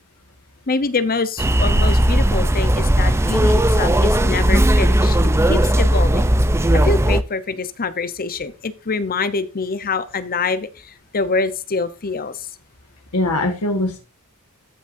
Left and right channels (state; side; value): normal; both; correlation 0.73